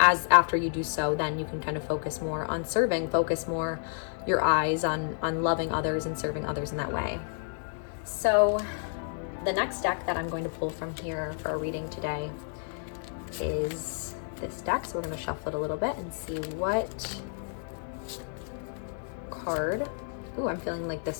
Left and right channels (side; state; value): right; silent; digital silence